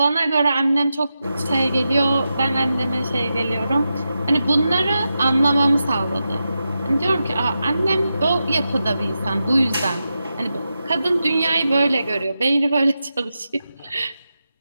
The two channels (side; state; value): both; inverted; correlation -0.90